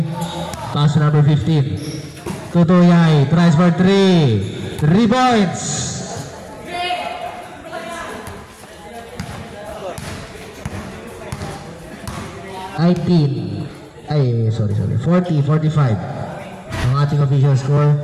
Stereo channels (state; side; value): identical; both; correlation 1.00